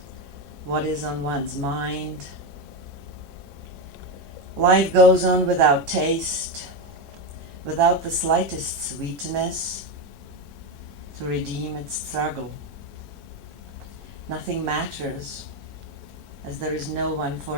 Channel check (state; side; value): normal; both; correlation 0.11